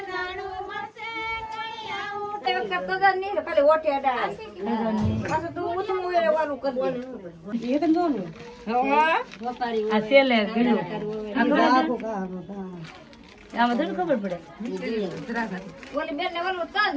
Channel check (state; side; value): identical; both; correlation 1.00